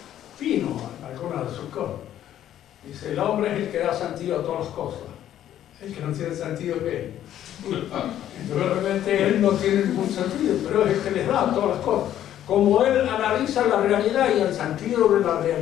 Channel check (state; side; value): quieter; right; 11.5 dB